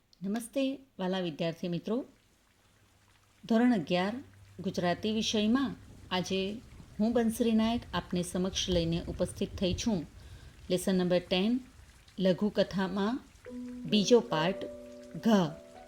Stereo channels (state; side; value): identical; both; correlation 1.00